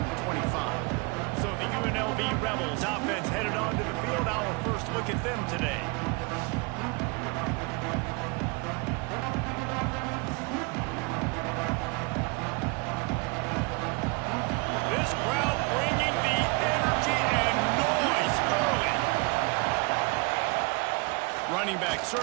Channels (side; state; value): left; quieter; 29.7 dB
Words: the 25. So the UNLV Rebels offense headed onto the field. Our first look at them today. This crowd bringing the energy and noise early. Running back